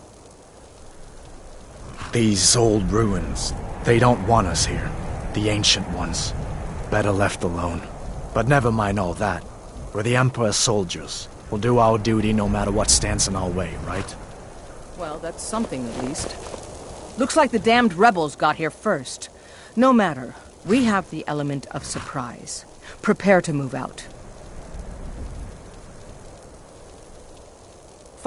These old ruins, they don't want us here. The ancient ones. Better left alone. But never mind all that. We're the Emperor's soldiers. We'll do our duty no matter what stands in our way, right? Well, that's something at least. Looks like the damned rebels got here first. No matter. We have the element of surprise. Prepare to move out.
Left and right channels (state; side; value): identical; both; correlation 1.00